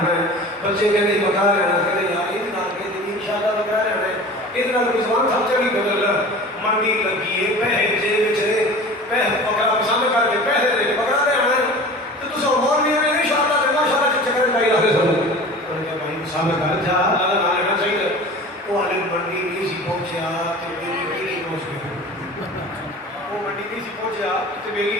ہے بچے کہتے ہیں بکرا لینا کہتے ہیں یار اتنا کہتے ہیں انشاءاللہ بکرا لینا ہے اتنا رضوان صاحب چلی بدل منڈی لگی ہے پہے جے بچے پہے بکرا پسند کر کے پہے دے بکرا لینا ہے تو تو سو مولوی ہے انشاءاللہ کہ ماشاءاللہ چکر پائی رہا ہے تو نے کہا بھائی پسند کر جا اللہ نہ لینا چاہیے وہ والے منڈی نہیں سی پہنچیا تو میری بیٹی پہنچ گئی وہ منڈی نہیں سی پہنچیا تو میری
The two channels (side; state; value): both; normal; correlation 0.39